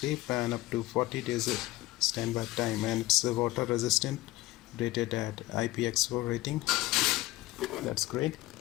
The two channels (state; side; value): quieter; right; 18.1 dB